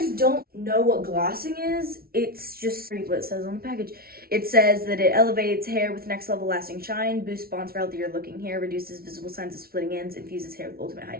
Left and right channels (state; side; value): late; left; 0.44 ms